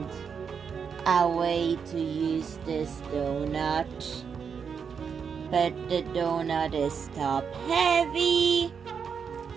a way to use this donut. But the donut is top heavy,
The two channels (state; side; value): quieter; left; 6.5 dB